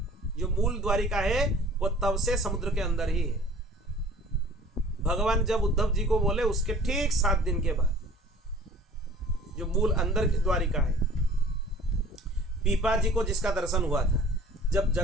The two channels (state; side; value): normal; both; correlation 0.48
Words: जो मूल द्वारिका है वो तब से समुद्र के अंदर ही है। भगवान जब उद्धव जी को बोले उसके ठीक 7 दिन के बाद जो मूल अंदर की द्वारिका है। पीपा जी को जिसका दर्शन हुआ था, जब